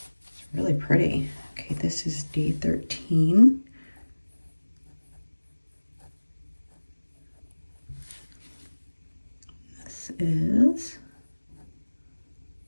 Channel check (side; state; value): both; inverted; correlation -1.00